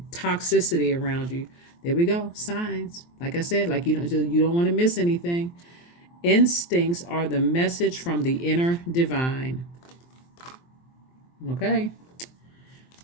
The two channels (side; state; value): right; late; 23 ms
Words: toxicity around you. There we go. Signs. Like I said, like you don't want to miss anything. Instincts are the message from the inner divine. Okay.